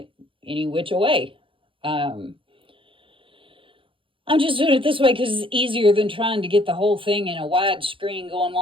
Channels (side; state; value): left; late; 0.25 ms